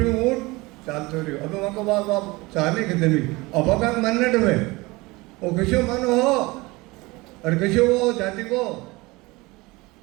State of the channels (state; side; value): quieter; left; 22.7 dB